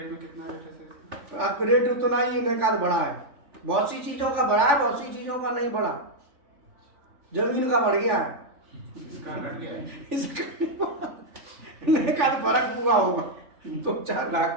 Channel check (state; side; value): late; left; 3.4 ms